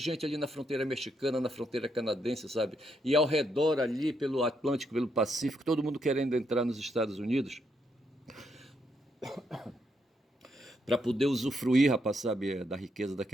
ali na fronteira mexicana, na fronteira canadense, sabe? E ao redor ali, pelo Atlântico, pelo Pacífico, todo mundo querendo entrar nos Estados Unidos para poder usufruir, rapaz, sabe, da riqueza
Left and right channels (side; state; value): both; normal; correlation 0.77